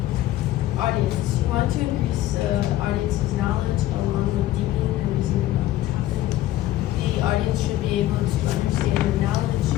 audience. You want to increase the audience's knowledge along with deepening and reasoning about the topic. The audience should be able to understand the knowledge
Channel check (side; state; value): right; quieter; 14.5 dB